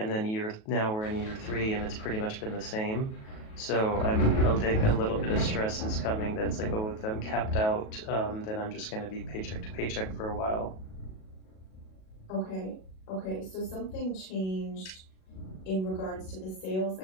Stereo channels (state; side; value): late; right; 37 ms